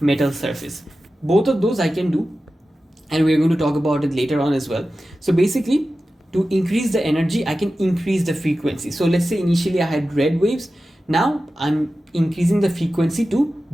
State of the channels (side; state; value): both; normal; correlation 0.94